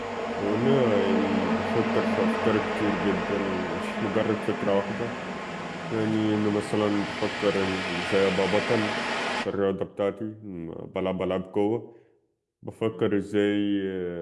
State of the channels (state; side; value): identical; both; correlation 1.00